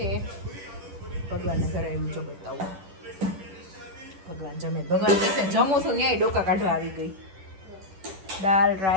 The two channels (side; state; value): left; late; 10 ms